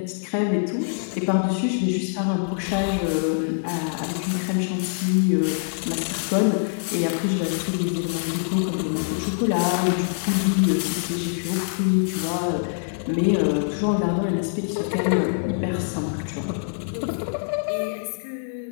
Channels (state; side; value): silent; right; digital silence